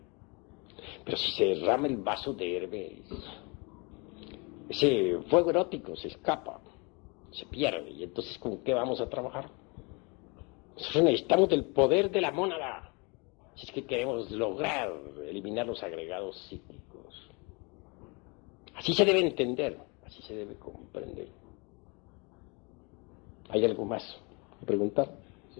Pero si se derrama el vaso de Hermes, ese fuego erótico se escapa, se pierde, y entonces ¿con qué vamos a trabajar? Nosotros necesitamos del poder de la mónada, si es que queremos lograr eliminar los agregados psíquicos. Así se debe entender, así se debe comprender. ¿Hay algo más que preguntar?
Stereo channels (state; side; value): quieter; right; 30.1 dB